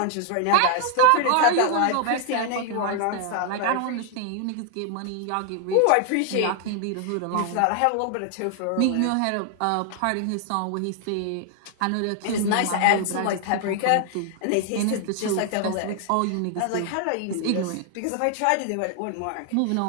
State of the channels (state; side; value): different; both; correlation 0.00